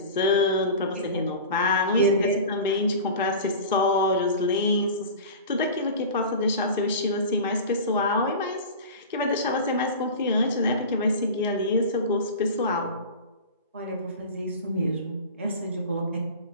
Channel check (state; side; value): inverted; both; correlation -0.33